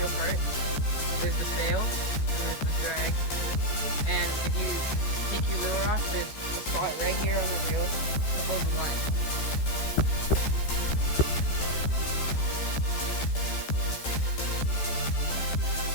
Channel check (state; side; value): late; right; 14 ms